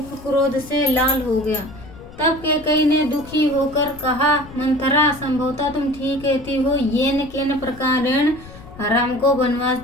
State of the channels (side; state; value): left; noise; rumble, 18 dB below the sound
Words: क्रोध से लाल हो गया। तब कैकेयी ने दुखी होकर कहा, मंथरा, संभवतः तुम ठीक कहती हो। येन केन प्रकारेण राम को वनवास